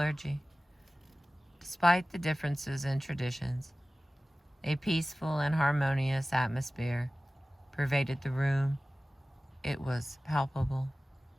Despite the differences in traditions, a peaceful and harmonious atmosphere pervaded the room. It was palpable.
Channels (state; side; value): normal; both; correlation 0.97